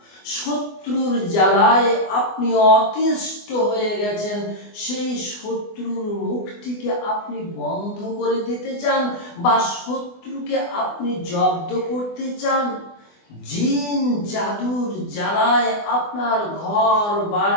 শত্রুর জ্বালায় আপনি অতিষ্ঠ হয়ে গেছেন, সেই শত্রুর মুখটিকে আপনি বন্ধ করে দিতে চান বা শত্রুকে আপনি জব্দ করতে চান, জিন জাদুর জ্বালায় আপনার ঘর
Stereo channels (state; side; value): late; right; 24 ms